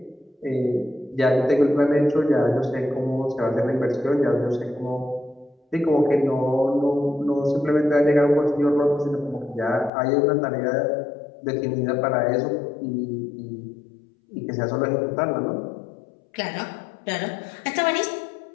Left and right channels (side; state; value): right; drops out; at 9.9 s